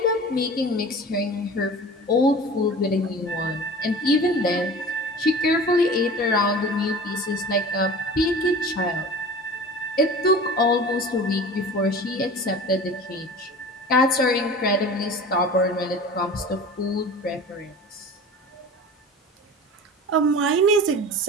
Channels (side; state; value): both; normal; correlation 0.38